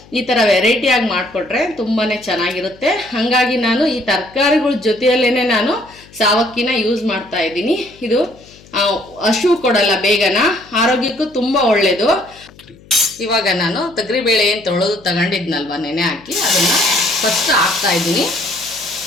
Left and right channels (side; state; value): left; noise; hum, 25 dB below the sound